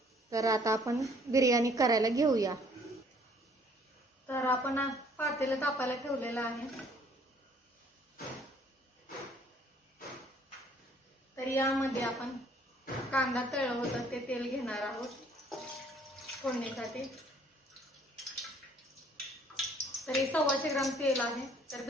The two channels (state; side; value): normal; both; correlation 0.59